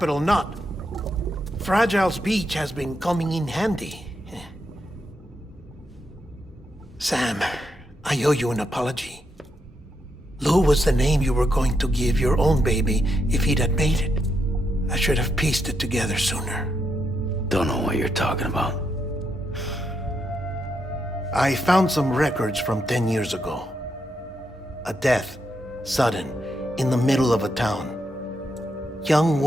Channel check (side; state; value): both; normal; correlation 0.81